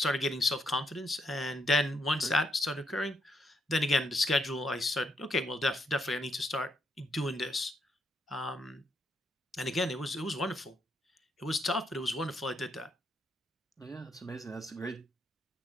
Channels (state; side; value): normal; both; correlation 0.76